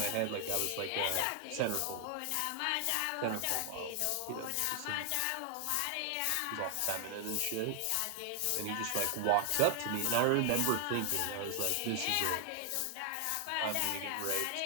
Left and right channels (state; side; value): different; both; correlation 0.00